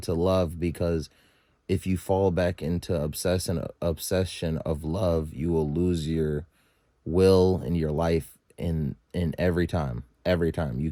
love, because if you fall back into obsession of love, you will lose your will in your life in every time you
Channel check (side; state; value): both; identical; correlation 1.00